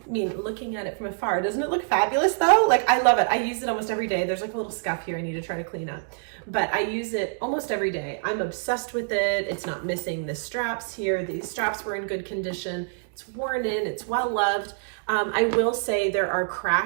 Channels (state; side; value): silent; left; digital silence